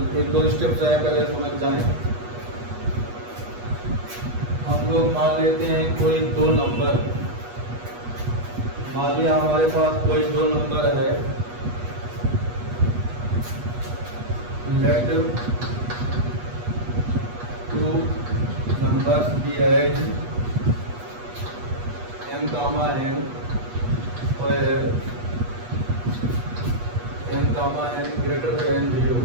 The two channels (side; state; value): left; late; 8.3 ms